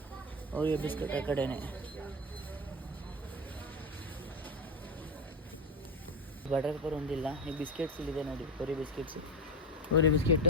ಓರಿಯೋ ಬಿಸ್ಕೆಟ್ ಆ ಕಡೆನೇ. ಬಟರ್ ಪೇಪರ್ ಒಂದಿಲ್ಲ. ಈ ಬಿಸ್ಕೆಟ್ಸ್ ಇಲ್ಲಿದೆ ನೋಡಿ, ಓರಿಯೋ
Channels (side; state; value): both; normal; correlation 0.18